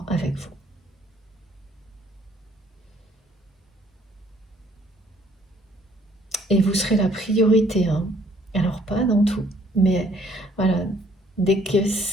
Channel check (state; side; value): normal; both; correlation 0.62